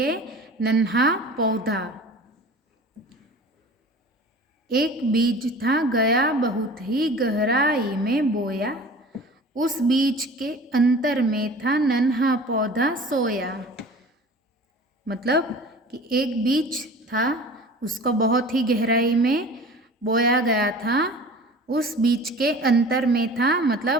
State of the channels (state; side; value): normal; both; correlation 0.41